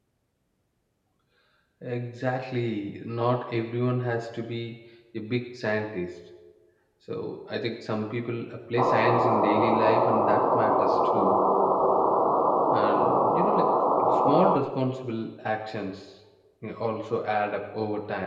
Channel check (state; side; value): identical; both; correlation 1.00